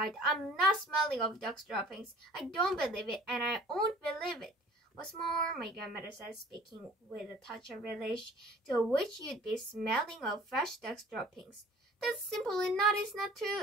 I'm not smelling of dog's droppings. I don't believe it, and I won't believe it. What's more, my grandmother said, speaking with a touch of relish, to which you'd be smelling of fresh dog's droppings. That simply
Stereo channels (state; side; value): normal; both; correlation 0.49